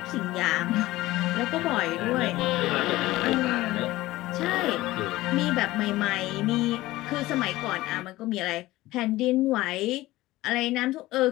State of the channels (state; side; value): quieter; right; 17.7 dB